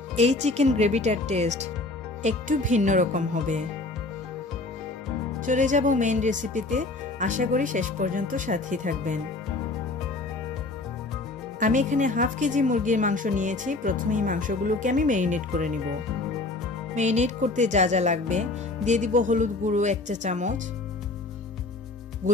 এই চিকেন গ্রেভিটার টেস্ট একটু ভিন্ন রকম হবে। চলে যাব মেইন রেসিপিতে, আশা করি শেষ পর্যন্ত সাথেই থাকবেন। আমি এখানে হাফ কেজি মুরগির মাংস নিয়েছি। প্রথমেই মাংসগুলোকে আমি ম্যারিনেট করে নিব। ম্যারিনেট করতে যা যা লাগবে দিয়ে দিব হলুদ গুঁড়ো 1 চা চামচ,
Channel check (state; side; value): quieter; right; 3.2 dB